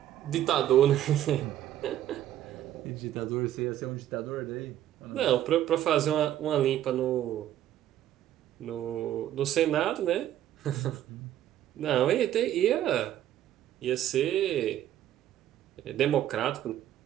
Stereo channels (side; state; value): left; quieter; 12.2 dB